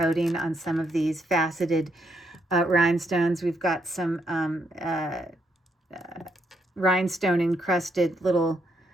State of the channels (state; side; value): normal; both; correlation 0.76